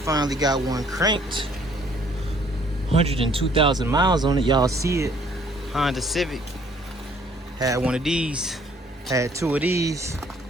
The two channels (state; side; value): normal; both; correlation 0.60